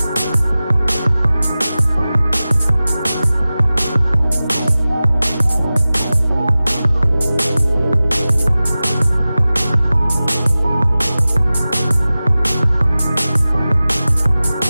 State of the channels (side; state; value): both; inverted; correlation -0.96